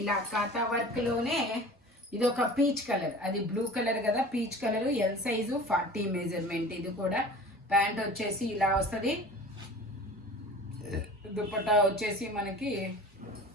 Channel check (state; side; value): normal; both; correlation 0.40